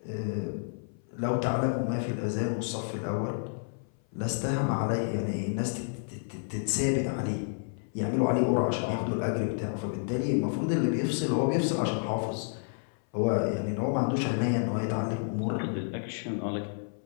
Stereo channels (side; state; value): right; silent; 57 dB below the other